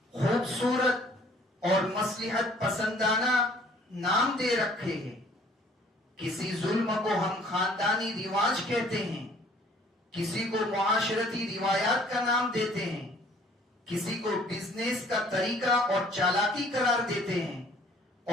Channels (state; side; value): normal; both; correlation 0.56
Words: خوبصورت اور مصلحت پسندانہ نام دے رکھے ہیں. کسی ظلم کو ہم خاندانی رواج کہتے ہیں، کسی کو معاشرتی روایات کا نام دیتے ہیں، کسی کو بزنس کا طریقہ اور چالاکی قرار دیتے ہیں،